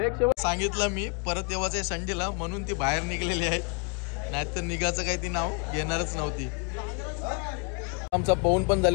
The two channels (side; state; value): right; quieter; 34.6 dB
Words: एक शेवट सांगितलं मी परत येवाचं आहे संडेला म्हणून ती बाहेर निघलेली आहे, नाहीतर निघाचं काही ती नाव घेणारच नव्हती. आमचा पवून पण